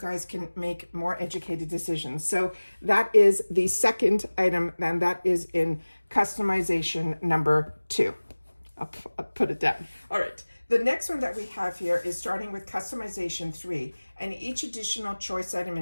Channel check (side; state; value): both; inverted; correlation -1.00